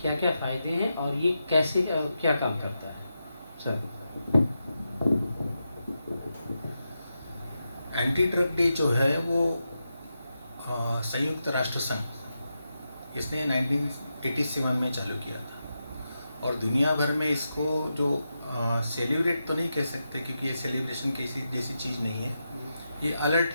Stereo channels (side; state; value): both; inverted; correlation -0.88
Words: क्या-क्या फ़ायदे हैं और ये कैसे क्या काम करता है? सर। एंटी ड्रग डे जो है वो संयुक्त राष्ट्र संघ इसने 1987 में चालू किया था और दुनिया भर में इसको जो सेलिब्रेट तो नहीं कह सकते क्योंकि ये सेलिब्रेशन किसी जैसी चीज़ नहीं है, ये अलर्ट